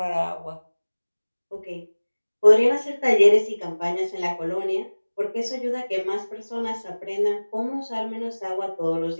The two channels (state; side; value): inverted; both; correlation -1.00